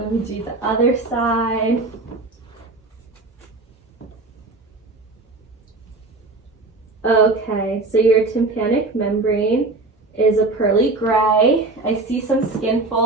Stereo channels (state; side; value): quieter; left; 3.3 dB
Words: me do the other side. Okay, so your tympanic membrane is a pearly gray. I see some skin